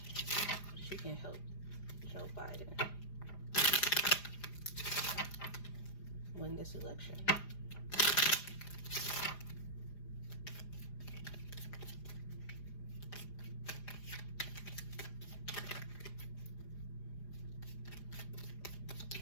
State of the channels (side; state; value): right; late; 4.9 ms